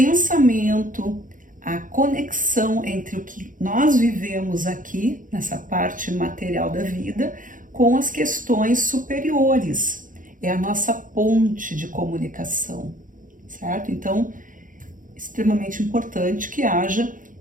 a conexão entre o que nós vivemos aqui, nessa parte material da vida, com as questões superiores. É a nossa ponte de comunicação, certo? Então, extremamente importante que haja,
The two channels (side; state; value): left; late; 0.39 ms